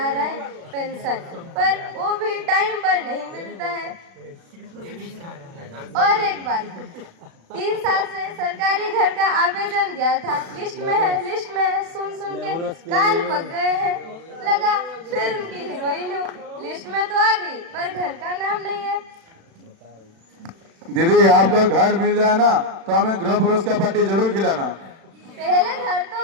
है पेंशन, पर वो भी टाइम पर नहीं मिलता है। और एक बात, 3 साल से सरकारी घर का आवेदन दिया था, लिस्ट में है, सुन के कान पक गए हैं। लगा फिल्म की हीरोइन हूँ, लिस्ट में तो आ गई पर घर का नाम नहीं है। दीदी आपको घर मिल जाए ना तो हमें गृह प्रवेश का पार्टी जरूर खिलाना। पहले घर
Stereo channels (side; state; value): left; late; 36 ms